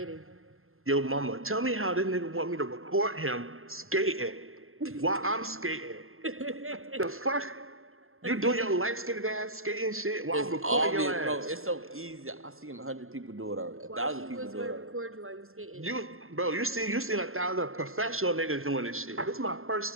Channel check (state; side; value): late; left; 0.61 ms